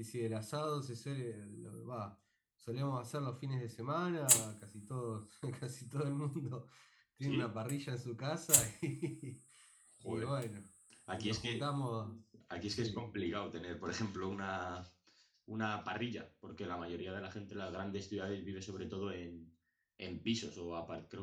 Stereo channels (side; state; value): both; identical; correlation 1.00